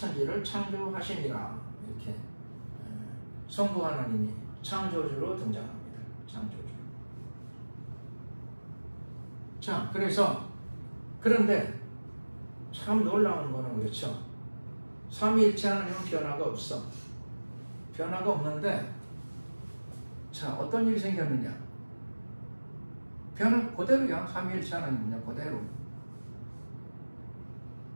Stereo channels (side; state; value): both; inverted; correlation -1.00